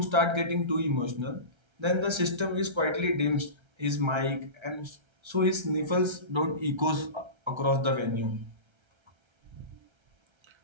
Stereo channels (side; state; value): left; late; 1.3 ms